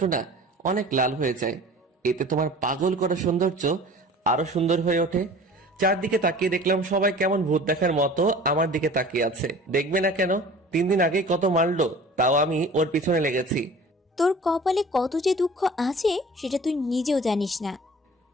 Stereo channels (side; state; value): both; normal; correlation 0.44